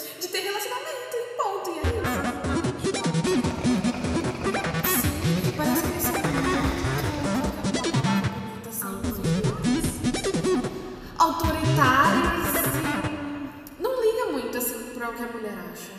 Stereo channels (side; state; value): both; identical; correlation 1.00